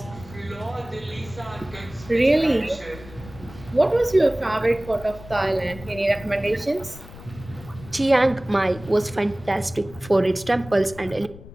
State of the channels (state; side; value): noise; left; rumble, 17 dB below the sound